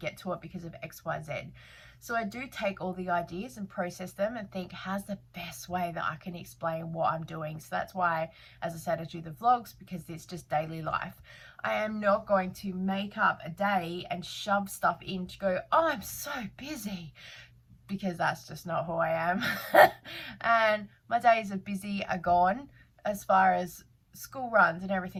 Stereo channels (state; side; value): identical; both; correlation 1.00